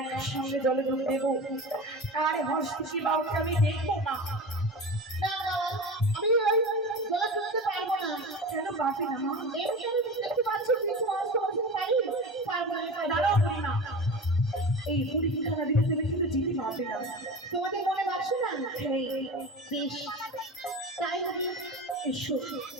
জলে ডুব দেবো আর হস্তি বাউকে আমি দেখবো মা। না না, আমি ওই জলে ডুবতে পারবো না। কেন পারবে না মা? এমনি আমি দেখতে পাচ্ছি কিছু মানুষ তোমার সাথে পারি, পারবো না। দাঁড়াও করি না, এই পরীক্ষা দিতে তুমি কিন্তু যেতে পারবে না। তোমাদের মনে ভাবছো না? হ্যাঁ, বেশ, তাই হবে। এসো।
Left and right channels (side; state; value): both; normal; correlation 0.30